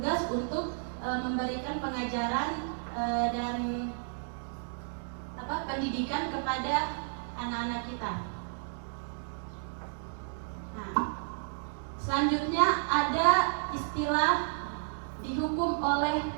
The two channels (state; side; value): silent; left; digital silence